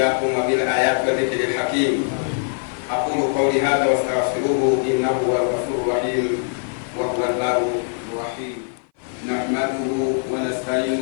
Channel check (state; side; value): silent; right; 58 dB below the other